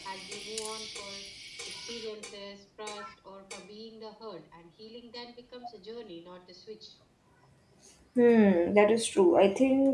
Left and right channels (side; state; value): both; identical; correlation 1.00